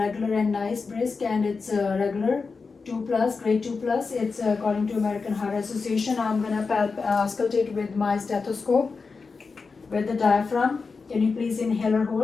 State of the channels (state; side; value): quieter; right; 4.6 dB